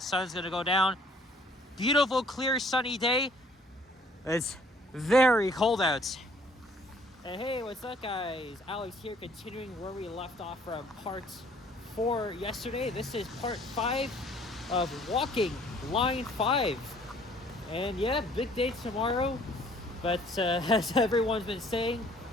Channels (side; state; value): both; normal; correlation 0.58